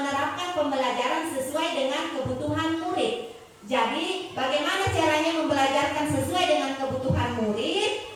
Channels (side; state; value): both; identical; correlation 1.00